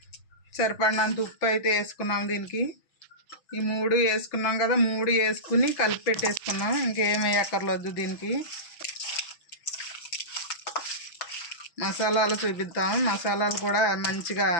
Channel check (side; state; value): right; late; 5.9 ms